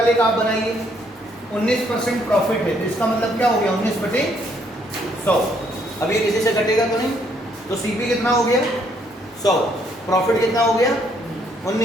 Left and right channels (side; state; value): both; normal; correlation 0.69